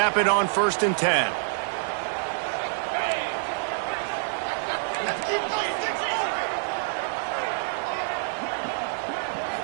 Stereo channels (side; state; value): left; silent; digital silence